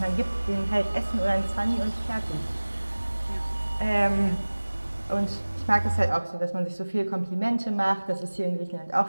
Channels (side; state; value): both; inverted; correlation -1.00